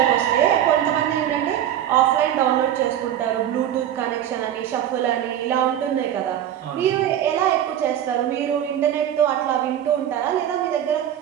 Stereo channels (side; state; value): left; quieter; 10.8 dB